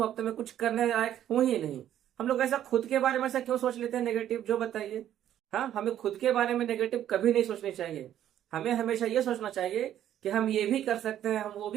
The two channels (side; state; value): left; quieter; 11.2 dB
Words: अब तो मैं कुछ करने लायक हूं ही नहीं। हम लोग ऐसा खुद के बारे में ऐसा क्यों सोच लेते हैं नेगेटिव, जो बताइए। हाँ, हमें खुद के बारे में नेगेटिव कभी नहीं सोचनी चाहिए। हमें हमेशा ये सोचना चाहिए कि हम ये भी कर सकते हैं, हम वो